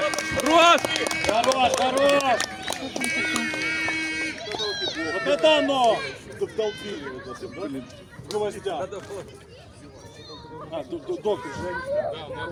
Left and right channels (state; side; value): identical; both; correlation 1.00